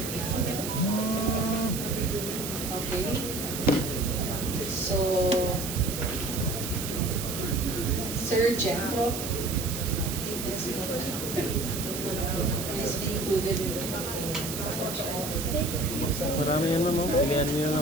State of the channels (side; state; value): right; noise; hiss, 6 dB below the sound